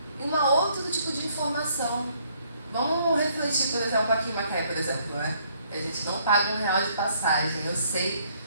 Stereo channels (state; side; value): inverted; both; correlation -0.66